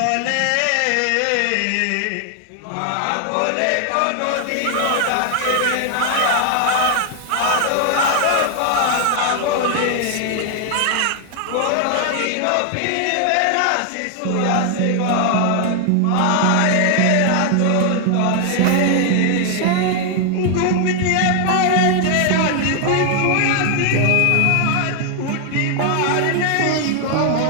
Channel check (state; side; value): different; both; correlation 0.00